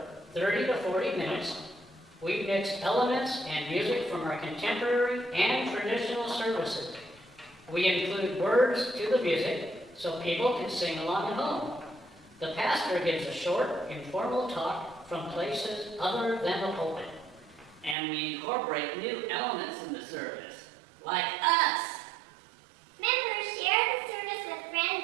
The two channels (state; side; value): drops out; left; at 17.9 s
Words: 30 to 40 minutes. We mix elements and music from our contemporary and traditional services. We include words to the music so people can sing along at home. The pastor gives a short, informal talk from places other than the pulpit. And we incorporate new elements in the service, like us. Members share the service with